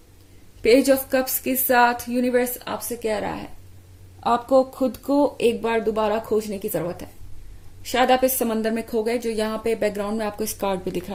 पेज ऑफ कप्स के साथ यूनिवर्स आपसे कह रहा है आपको खुद को एक बार दोबारा खोजने की जरूरत है। शायद आप इस समंदर में खो गए, जो यहाँ पे बैकग्राउंड में आपको इस कार्ड पे दिख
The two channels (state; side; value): identical; both; correlation 1.00